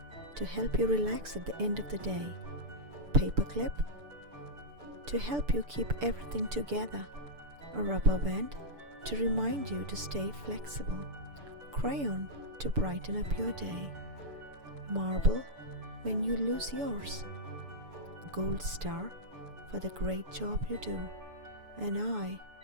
to help you relax at the end of the day. Paperclip to help you keep everything together. A rubber band to remind you to stay flexible. Crayon to brighten up your day. Marble when you lose yours. Gold star for the great job you do. An eye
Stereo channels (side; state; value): left; late; 6.9 ms